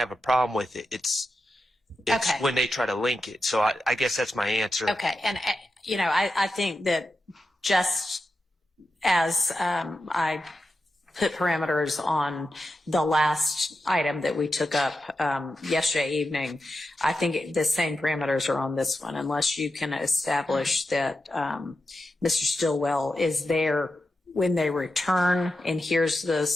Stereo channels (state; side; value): normal; both; correlation 0.89